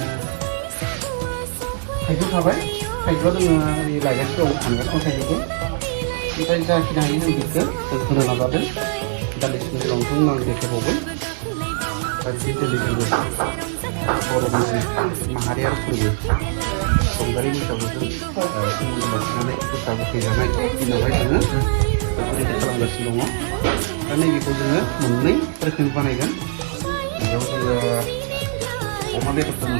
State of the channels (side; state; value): left; silent; digital silence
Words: थाइजौ थाबाय थाइजौआ जोङो लायगासिनो दं थांगासिनो थाइजौखौ ओमफ्राय जाखिनि हायो जों बेखौ जों होनो नाजादों दान्दिसेनि उनावथ' आं देखायबावगोन दा दिनै जोङो बर'नि माहारियारि फोरबो रंजालि बैसागुजों सोमोन्दो लाखिनानै गोखा गोखै जानाय दिनावहाय जोङो बेफोरबायदि खालामगासिनो दङ दा नैबेखौ जोङो मोननै रोखोमनि बानायगोन बेयाव जोङो अमा बेदरखौ